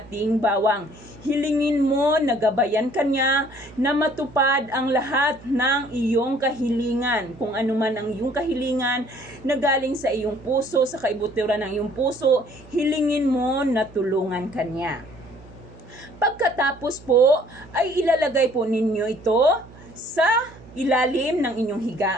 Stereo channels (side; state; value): right; noise; hum, 21 dB below the sound